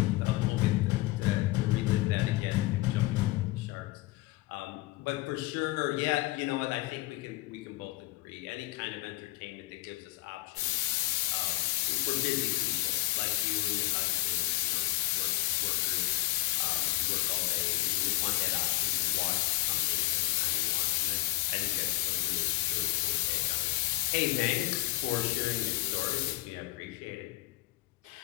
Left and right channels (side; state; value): right; quieter; 17.6 dB